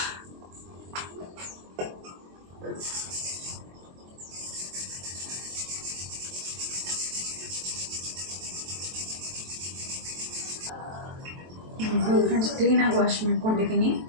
ಫ್ರೆಂಡ್ಸ್, ಕ್ಲೀನಾಗಿ ವಾಶ್ ಮಾಡ್ಕೊಂಡಿದ್ದೀನಿ.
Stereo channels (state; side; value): late; left; 23 ms